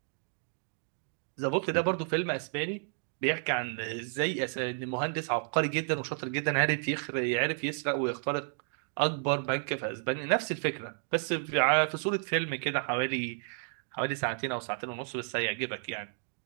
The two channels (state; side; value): silent; left; 57 dB below the other